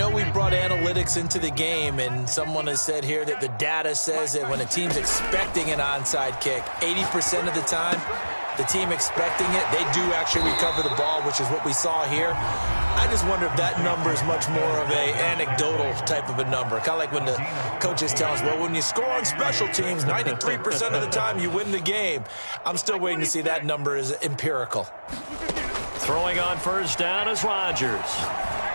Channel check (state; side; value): inverted; both; correlation -1.00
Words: we brought analytics into the game, and someone has said here that the data says that when a team's expecting an onside kick, 80% of the time, the team expecting it, they do actually recover the ball, which is what we saw here. I just wonder if that number is much more of a anecdotal type of a number. Kind of like when the coaches tell us, well, when you score on special teams, 93% of the time you win the game. I'm still waiting to see that number is empirical. Throwing on 1st down is Rodgers.